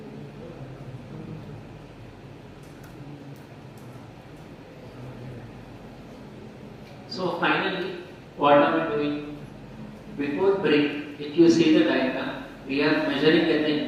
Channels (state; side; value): identical; both; correlation 1.00